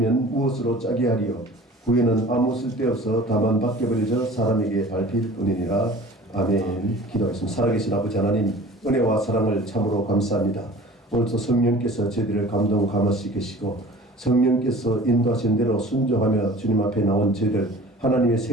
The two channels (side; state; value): both; normal; correlation 0.44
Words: 무엇으로 짜게 하리요 후에는 아무 쓸데없어 다만 밖에 버려져 사람에게 밟힐 뿐이니라. 아멘. 기도하겠습니다. 살아계신 아버지 하나님 은혜와 사랑을 참으로 감사합니다. 오늘도 성령께서 저희들을 감동 감화시 계시고 성령께서 인도하신 대로 순종하며 주님 앞에 나온 저희들 하나님의